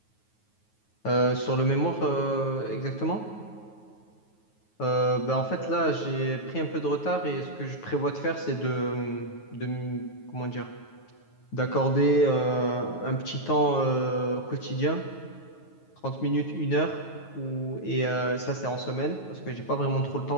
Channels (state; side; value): late; right; 9.3 ms